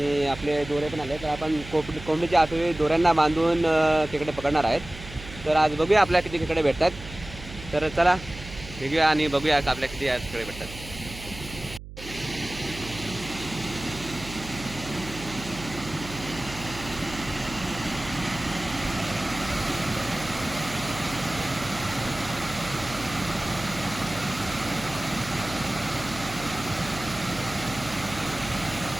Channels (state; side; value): noise; right; hum, 13 dB below the sound